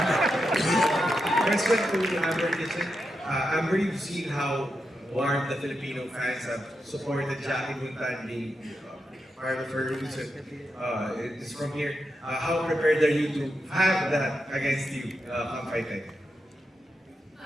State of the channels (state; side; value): normal; both; correlation 0.86